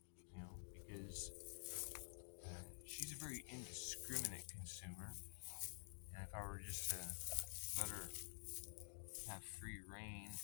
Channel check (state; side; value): silent; right; digital silence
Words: because she's a very indiscriminate consumer, and if I were just to let her have free reign